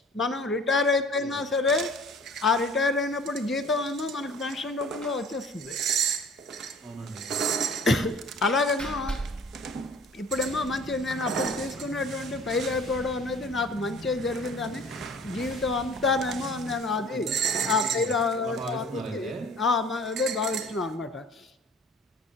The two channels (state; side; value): normal; both; correlation 0.48